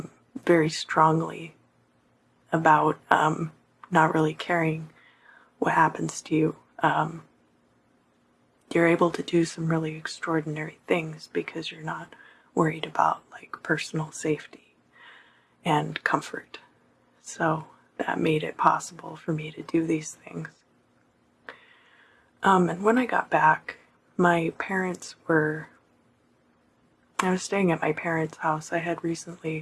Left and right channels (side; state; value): both; identical; correlation 1.00